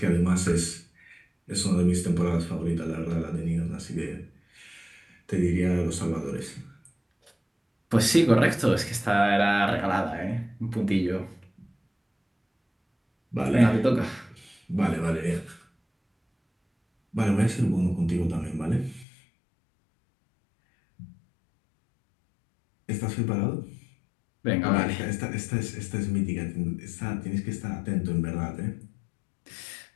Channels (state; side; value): drops out; right; at 19.1 s